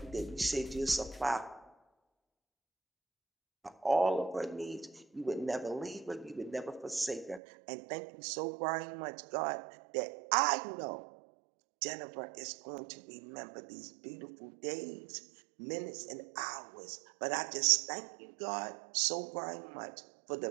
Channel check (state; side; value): drops out; left; at 7.4 s